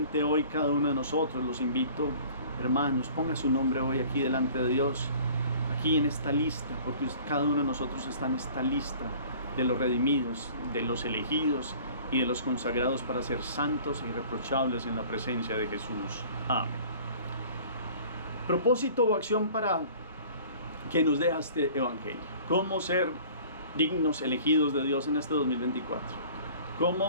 hoy cada uno de nosotros, los invito, hermanos, ponga su nombre hoy aquí delante de Dios, aquí en esta lista, porque cada uno de nosotros está en esta lista de los redimidos, de los elegidos y de los consagrados para ser santos e irreprochables en la presencia de Jesús. Amén. Propósito o acción para que nos deja este evangelio. ¿Cómo ser dignos, elegidos de Dios en este 2024?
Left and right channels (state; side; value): inverted; both; correlation -0.48